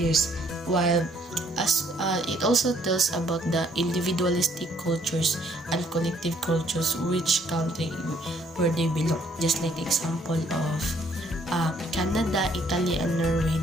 while it also tells about the individualistic cultures and collective cultures, which country where they belong. Just like the example of Canada, Italy, and Norway,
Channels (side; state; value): both; normal; correlation 0.65